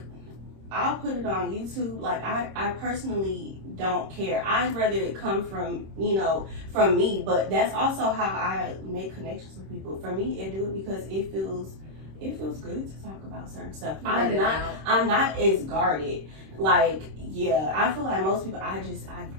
I'll put it on YouTube. Like, I personally don't care. I'd rather it come from, you know, from me. But that's also how I make connections with people. For me, I do it because it feels good to talk about certain stuff. I'm not as guarded. Like, yeah, I feel like most people, I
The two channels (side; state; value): left; late; 26 ms